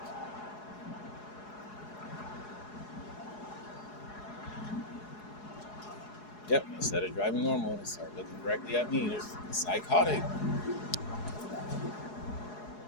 Yep. Instead of driving normal, they start looking directly at me. They're psychotic.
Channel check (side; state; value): right; late; 4.8 ms